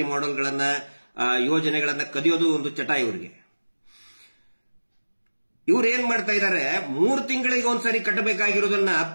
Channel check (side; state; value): both; inverted; correlation -1.00